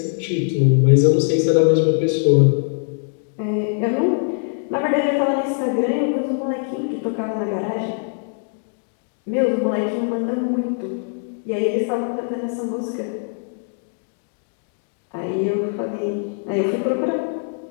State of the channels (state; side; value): silent; right; 59 dB below the other